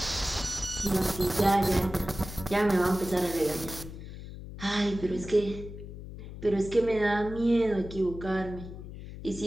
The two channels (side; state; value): left; noise; hum, 12 dB below the sound